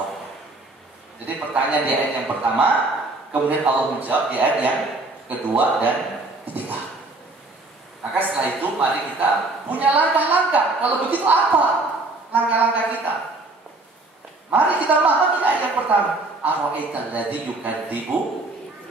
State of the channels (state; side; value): quieter; left; 3.1 dB